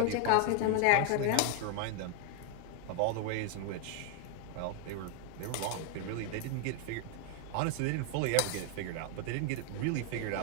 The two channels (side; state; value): both; different; correlation 0.01